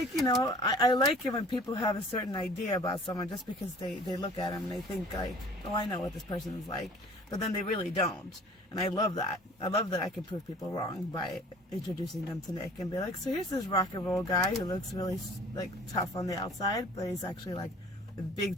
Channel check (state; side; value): normal; both; correlation 0.49